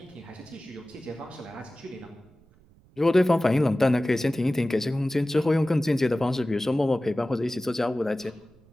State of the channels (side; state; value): right; noise; rumble, 29 dB below the sound